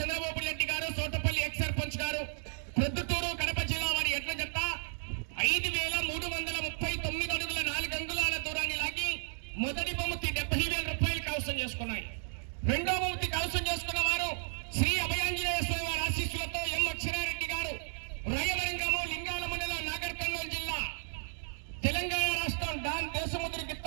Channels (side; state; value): left; silent; digital silence